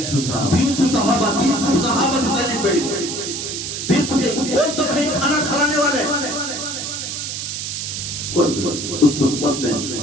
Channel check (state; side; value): noise; right; hiss, 5 dB below the sound